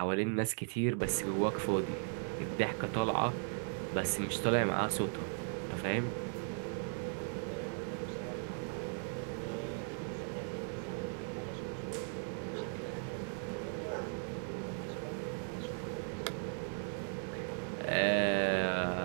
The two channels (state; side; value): silent; left; 53 dB below the other